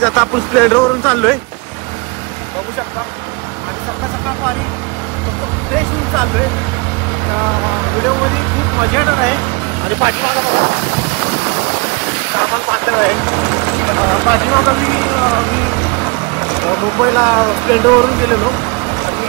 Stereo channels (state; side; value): quieter; left; 29.1 dB